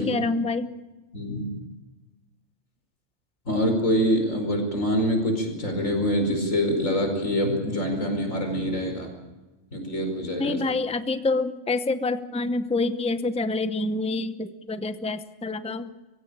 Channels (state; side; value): normal; both; correlation 0.17